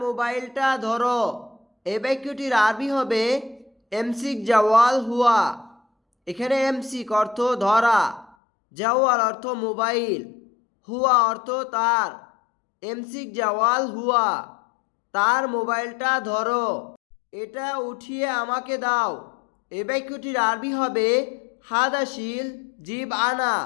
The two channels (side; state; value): right; drops out; at 8.3 s